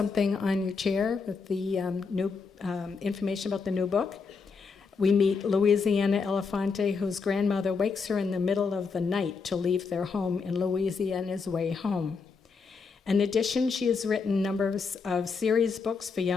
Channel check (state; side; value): quieter; right; 5.1 dB